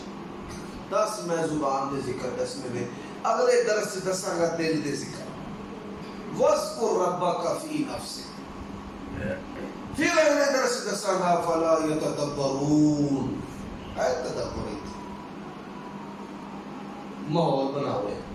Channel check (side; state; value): both; identical; correlation 1.00